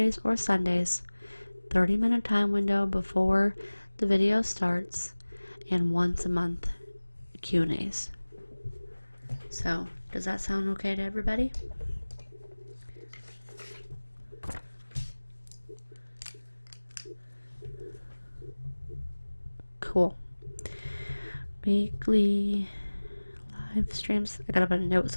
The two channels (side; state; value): both; inverted; correlation -1.00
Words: or Sundays, 30-minute time window before the video starts, and once a month Q&As. So, does that sound okay to everybody? Cool. Weekly live streams. I gotta put a note